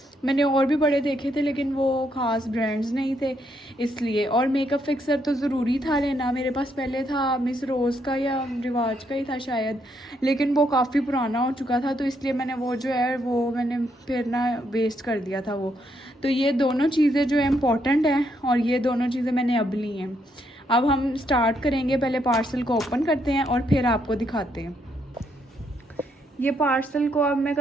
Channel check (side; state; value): both; normal; correlation 0.75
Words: मैंने और भी बड़े देखे थे लेकिन वो ख़ास ब्रांड्स नहीं थे इसलिए। और मेकअप फिक्सर तो ज़रूरी था लेना। मेरे पास पहले था मिस रोज़ का या रिवाज का ही था शायद, लेकिन वो काफ़ी पुराना हो चुका था, तो इसलिए मैंने वो जो है वो मैंने फिर ना वेस्ट कर दिया था वो। तो ये दोनों चीज़ें जो है इम्पॉर्टेंट हैं और ये दोनों चीज़ें मैंने अब ली हैं। अब हम स्टार्ट करेंगे, पहले पार्सल को ओपन करते हैं और फिर आपको दिखाते हैं। ये पार्सल को अब मैं